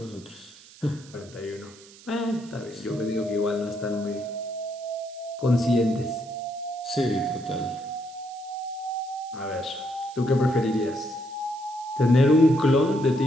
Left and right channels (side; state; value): right; noise; hiss, 22 dB below the sound